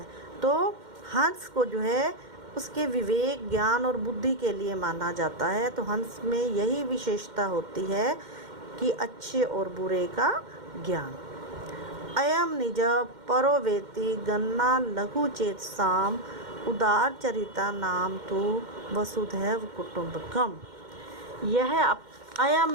तो हंस को जो है उसके विवेक, ज्ञान और बुद्धि के लिए माना जाता है। तो हंस में यही विशेषता होती है कि अच्छे और बुरे का ज्ञान। अयम निज परो वेति गन्ना लघु चेतसाम उदार चरिता नाम तु वसुधैव कुटुंबकम। यह अयम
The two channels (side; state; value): left; late; 2.1 ms